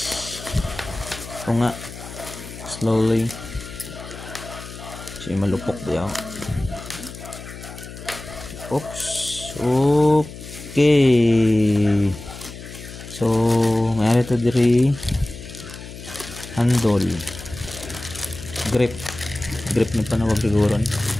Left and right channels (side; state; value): left; noise; hum, 13 dB below the sound